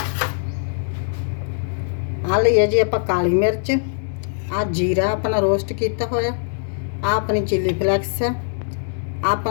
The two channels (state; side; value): silent; right; digital silence